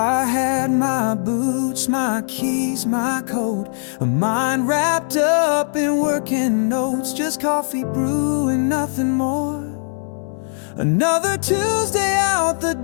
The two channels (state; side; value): silent; right; 62 dB below the other